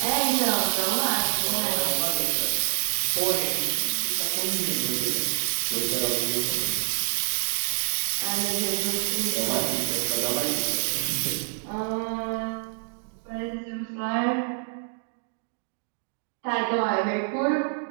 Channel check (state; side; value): silent; left; digital silence